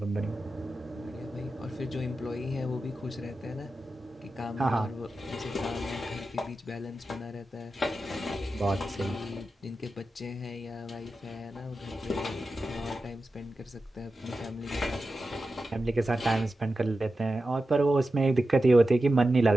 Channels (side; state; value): both; normal; correlation 0.92